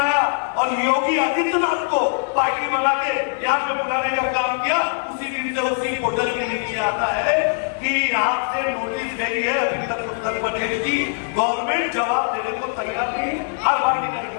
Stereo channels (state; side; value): silent; right; 59 dB below the other